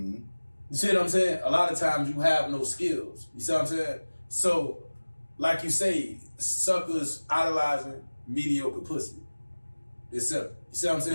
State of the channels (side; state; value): both; inverted; correlation -1.00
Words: You see what I'm saying? A lot of times you have no skills. You see what I'm saying? So, like you say, suckers idolizing mediocre pussy. It's simple. You see what I'm